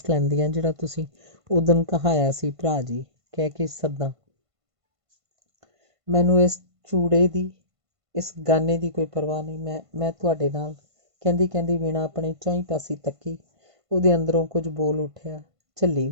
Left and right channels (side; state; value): left; late; 1.5 ms